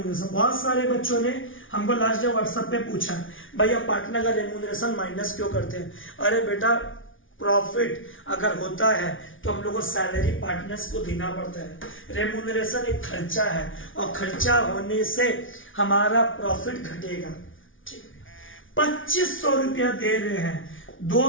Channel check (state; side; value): late; right; 0.57 ms